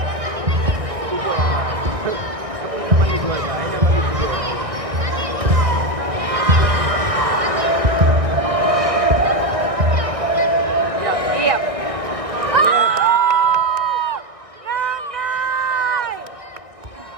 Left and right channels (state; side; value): late; left; 1.6 ms